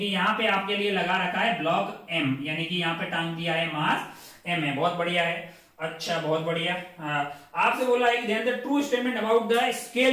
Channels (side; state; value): both; identical; correlation 1.00